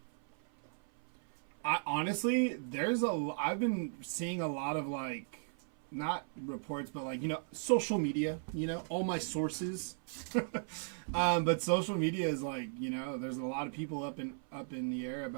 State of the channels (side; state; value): left; silent; 54 dB below the other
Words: Honestly, I've been seeing a lot of not reports, but social media, all my sources. But social media is there's a lot of people up in the air